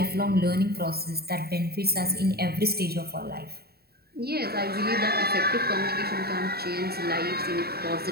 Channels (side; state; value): left; late; 0.46 ms